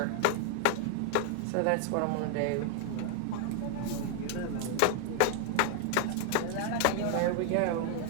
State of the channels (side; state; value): both; different; correlation 0.00